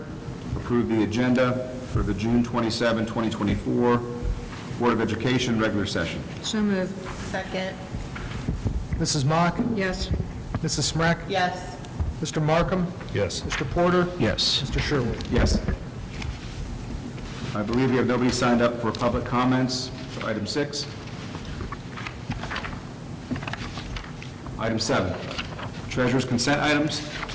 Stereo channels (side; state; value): both; identical; correlation 1.00